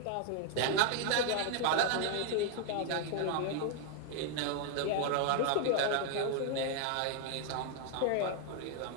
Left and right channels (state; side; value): different; both; correlation 0.00